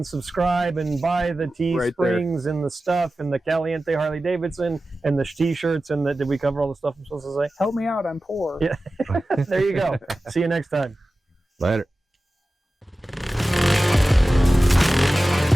subscribe and buy the Teesprings and the stuff and the Caliente Harley-Davidson and the T-shirts and did we cover all the stuff I'm supposed to say? help me out. I'm poor. Yeah. There you go. See you next time. Later.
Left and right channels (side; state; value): both; normal; correlation 0.95